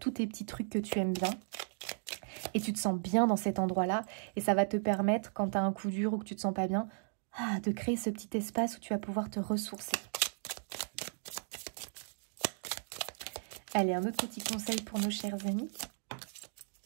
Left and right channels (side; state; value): left; silent; digital silence